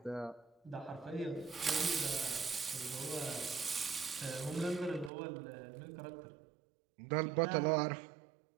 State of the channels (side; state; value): left; drops out; at 5.1 s